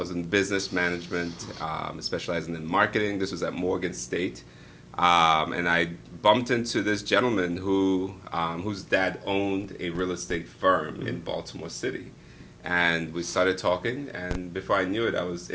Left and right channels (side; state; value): both; identical; correlation 1.00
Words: in business management, specializing in marketing. This was at Morgan State. And I bumped into this gentleman whose dad owned a real estate firm in Baltimore City. And we started talking, and before I knew it, I was